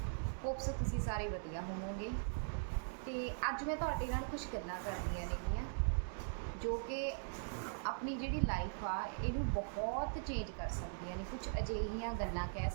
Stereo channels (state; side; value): silent; left; digital silence